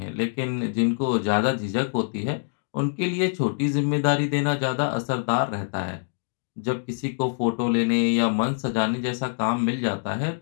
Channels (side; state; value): right; silent; digital silence